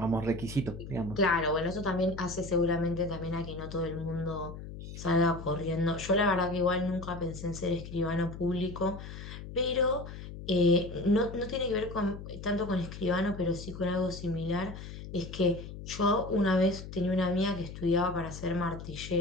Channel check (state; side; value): noise; left; hum, 11 dB below the sound